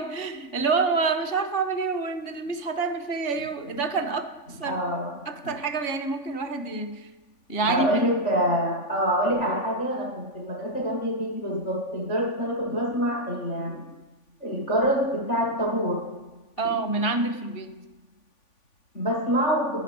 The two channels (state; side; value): late; right; 3.5 ms